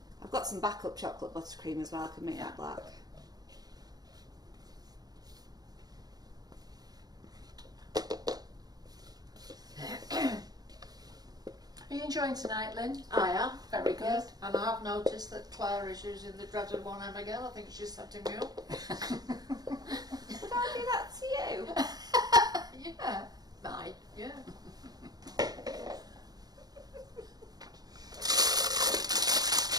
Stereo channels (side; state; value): left; late; 0.19 ms